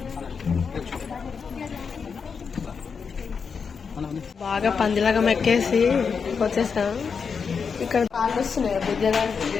బాగా పందిలాగా మెక్కేసి వచ్చేసాం. ఇక్కడ కాళ్ళు వస్తున్నాయి బుద్ధడానికి.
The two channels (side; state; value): right; quieter; 5.8 dB